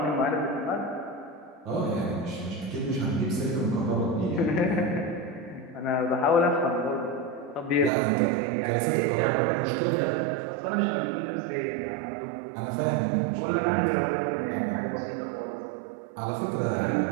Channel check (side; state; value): left; drops out; at 7.9 s